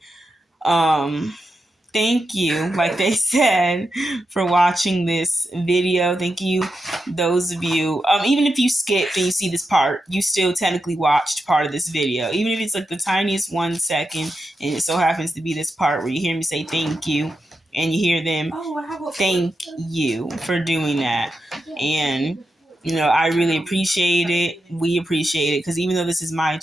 thank you, like they said, for watching this video. Thank you, those of you. Even if you skipped and you see this part, you still technically watched part of this video. Even if it's like the tiniest 1 second, and it so happens to be this part where you hear me say thank you, and you hear them thank you for doing that. And I really appreciate it. We appreciate it because even though this is my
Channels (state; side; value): normal; both; correlation 0.88